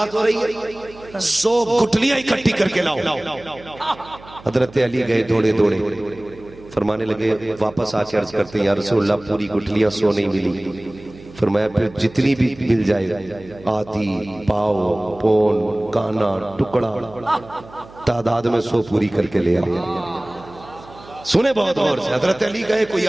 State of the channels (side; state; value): right; noise; hum, 21 dB below the sound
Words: ہو رہی ہے 100 گٹھلیاں اکٹھی کر کے لاؤ۔ حضرت علی گئے دوڑے دوڑے، فرمانے لگے واپس آ کے عرض کرتے ہیں یا رسول اللہ پوری گٹھلیاں 100 نہیں ملی۔ فرمایا پھر جتنی بھی مل جائے، آدھی، پاؤ، پون، کانا، ٹکڑا، تعداد میں 100 پوری کر کے لے آؤ۔ سنے بہت غور سے، حضرت علی گئے، کوئی